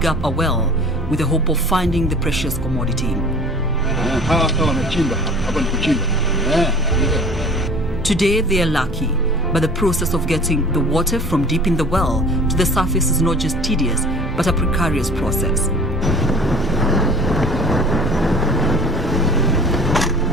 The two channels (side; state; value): right; noise; rumble, 8 dB below the sound